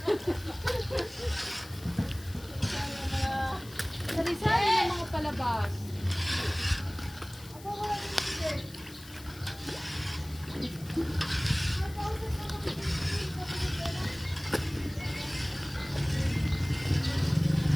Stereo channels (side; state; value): left; noise; hiss, 19 dB below the sound